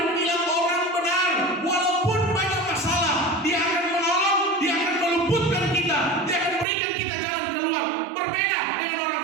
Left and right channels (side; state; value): left; drops out; at 6.7 s